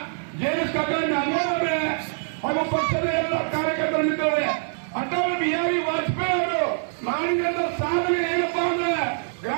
ಜೆಎಸ್ ಕಾಕಾ ನಾಗೋಡ್ ಅವರೇ ಹಾಗೂ ಪಕ್ಷದ ಎಲ್ಲ ಕಾರ್ಯಕರ್ತರ ಮಿತ್ರರೇ, ಅಟಲ್ ಬಿಹಾರಿ ವಾಜಪೇಯಿ ಅವರು ಮಾಡಿದಂತ ಸಾಧನೆ ಏನಪ್ಪಾ ಅಂದ್ರೆ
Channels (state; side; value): silent; left; digital silence